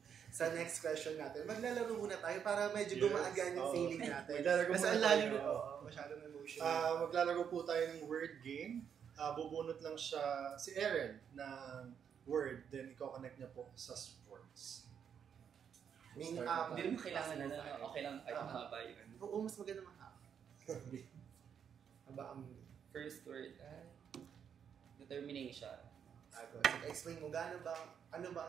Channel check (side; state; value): left; quieter; 7.8 dB